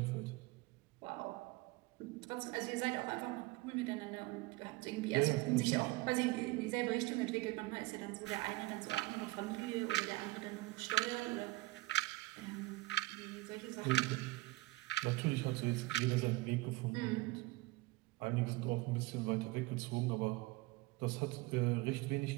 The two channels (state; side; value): quieter; left; 21.2 dB